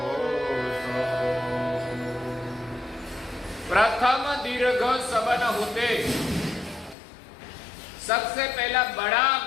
प्रथम दीर्घ सबन होते। सबसे पहला बड़ा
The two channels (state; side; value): drops out; right; at 7.0 s